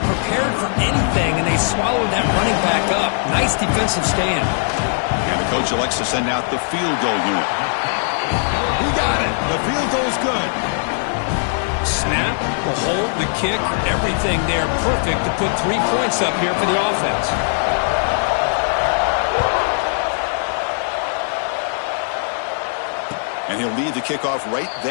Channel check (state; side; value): silent; right; digital silence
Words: for anything, and they swallowed that running back up. Nice defensive stand. And the coach elects to send out the field goal unit. He got it. The field goal's good. Snap, the hold, the kick, everything there perfect to put 3 points up here for the offense. And he'll lead the kickoff right